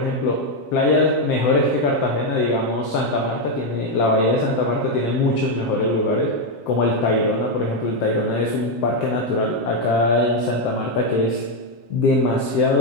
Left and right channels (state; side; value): late; right; 7.6 ms